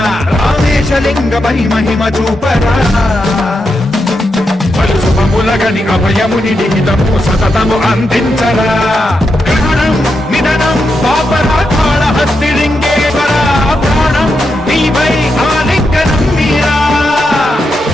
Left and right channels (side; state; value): both; normal; correlation 0.85